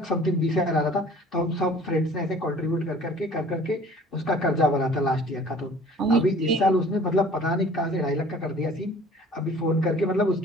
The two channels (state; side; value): normal; both; correlation 0.49